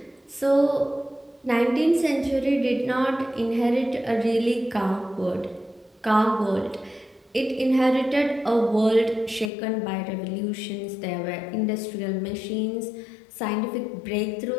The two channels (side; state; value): right; drops out; at 9.5 s